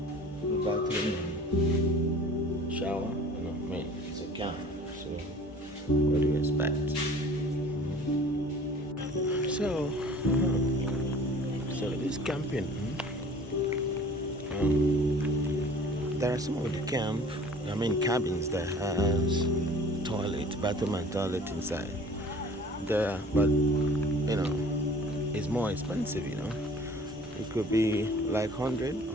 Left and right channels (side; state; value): both; normal; correlation 0.47